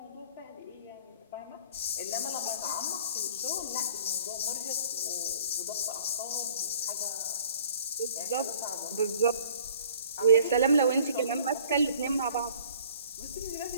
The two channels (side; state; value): both; inverted; correlation -0.52